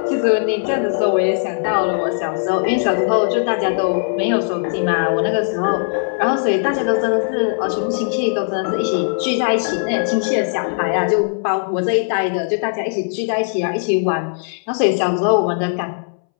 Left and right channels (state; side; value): silent; right; 65 dB below the other